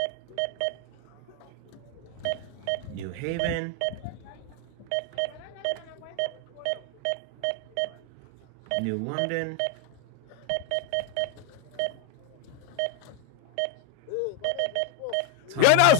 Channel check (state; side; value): different; both; correlation 0.01